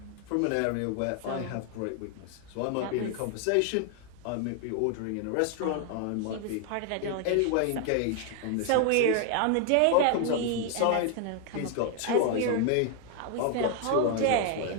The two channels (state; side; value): different; both; correlation 0.00